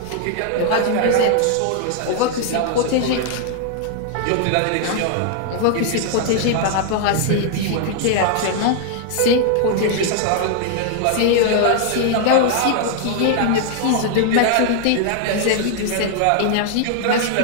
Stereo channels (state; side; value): different; both; correlation 0.00